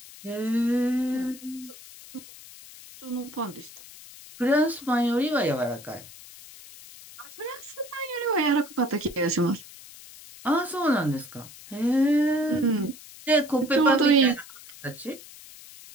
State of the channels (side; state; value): left; noise; hiss, 18 dB below the sound